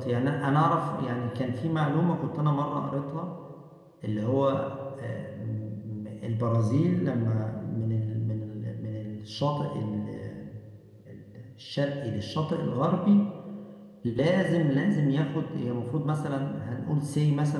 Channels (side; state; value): both; identical; correlation 1.00